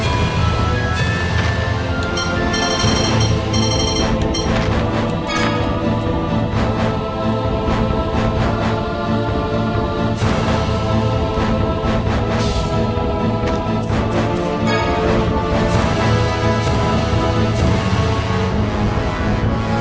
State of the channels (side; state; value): both; identical; correlation 1.00